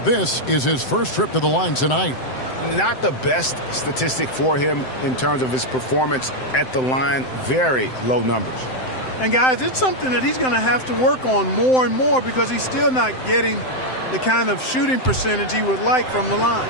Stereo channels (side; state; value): right; late; 7.8 ms